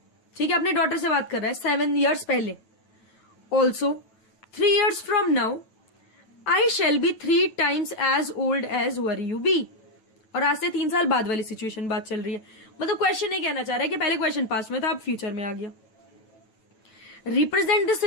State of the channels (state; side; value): late; right; 9.2 ms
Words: ठीक है, अपने डॉटर से बात कर रहा है 7 years पहले. Also, 3 years from now, I shall be 3 times as old as were you be. और आज से 3 साल बाद वाली सिचुएशन बात चल रही है. मतलब क्वेश्चन नहीं कहना चाह रहा है कि पहले क्वेश्चन पास्ट में था अब फ्यूचर में आ गया. Represent this